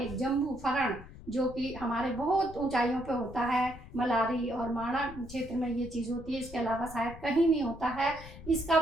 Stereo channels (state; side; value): noise; left; rumble, 15 dB below the sound